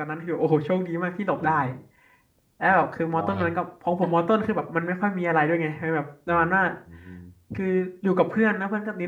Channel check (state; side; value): identical; both; correlation 1.00